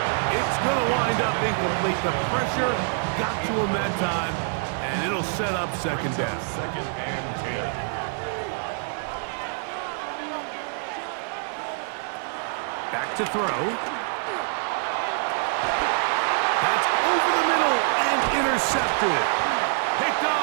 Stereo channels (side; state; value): left; silent; 61 dB below the other